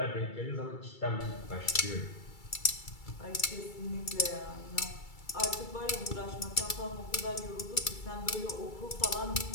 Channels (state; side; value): late; right; 2.3 ms